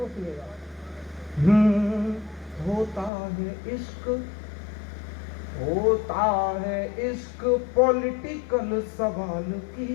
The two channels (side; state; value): right; drops out; at 3.1 s